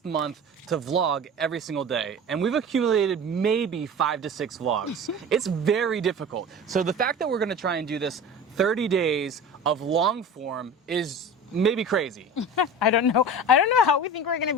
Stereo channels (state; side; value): normal; both; correlation 0.35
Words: month to vlog every single day, and we've accumulated maybe 5 to 6 vlogs. It's very difficult. So the fact that we're gonna try and do this 30 days of long form is maybe crazy. I don't know how we think we're gonna